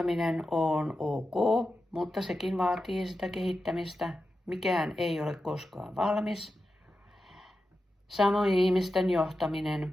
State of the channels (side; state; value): both; normal; correlation 0.91